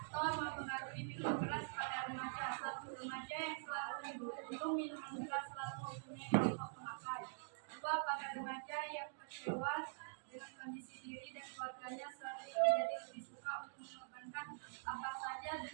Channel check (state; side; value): silent; left; digital silence